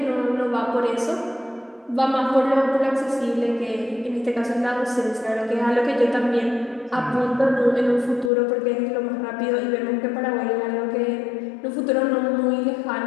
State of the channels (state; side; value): drops out; right; at 8.3 s